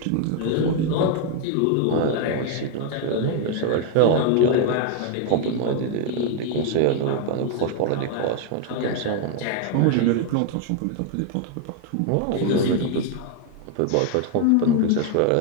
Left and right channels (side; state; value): both; different; correlation 0.00